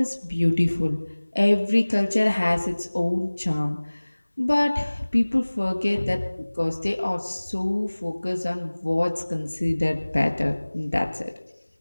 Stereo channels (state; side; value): inverted; both; correlation -1.00